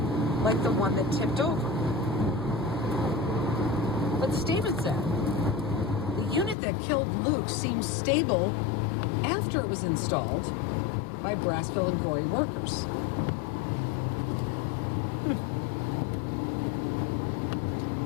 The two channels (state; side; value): drops out; right; at 6.6 s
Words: like the one that tipped over. But the statement said the unit that killed Luke seemed stable after it was installed by Brassfield and Gorey workers.